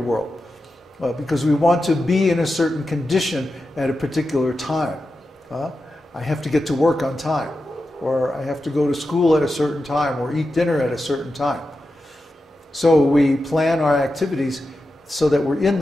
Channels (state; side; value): normal; both; correlation 0.90